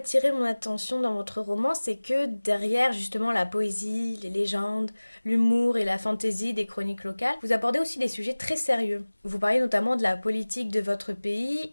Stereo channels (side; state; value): both; inverted; correlation -1.00